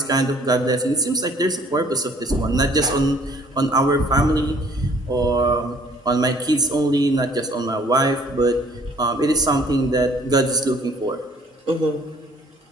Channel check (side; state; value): both; normal; correlation 0.58